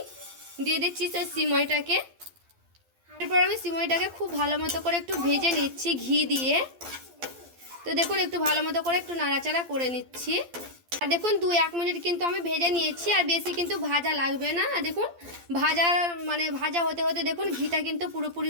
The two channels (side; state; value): left; late; 12 ms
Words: দিয়ে দিচ্ছি সেই সিমইটাকে। এরপর আমি সিমইটাকে খুব ভালো মতো করে একটু ভেজে নিচ্ছি ঘি দিয়ে। তো দেখুন একটু ভালো মতো করে একটু নাড়াচাড়া করে নিচ্ছি। আর দেখুন 2-1 মিনিট কিন্তু আমি ভেজে নিয়েছি, আর বেশি কিন্তু ভাজা লাগবে না। আর দেখুন ভাজা হতে হতে দেখুন ঘিটা কিন্তু